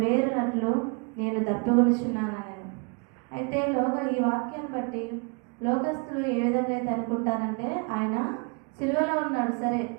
నేను దప్పిగొనుచున్నానని. అయితే ఈ వాక్యాన్ని బట్టి లోకస్తులు ఏ విధంగా అయితే అనుకుంటారంటే, ఆయన సిలువలో ఉన్నాడు, సరే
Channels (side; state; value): left; quieter; 34.3 dB